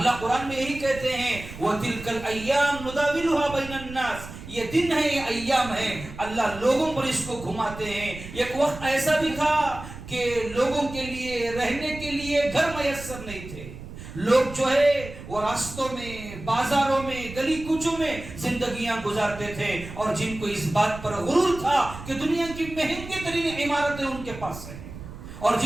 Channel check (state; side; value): noise; right; rumble, 13 dB below the sound